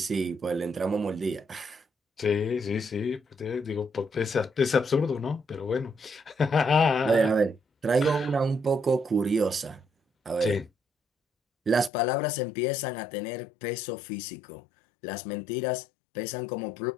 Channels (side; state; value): right; drops out; at 11.9 s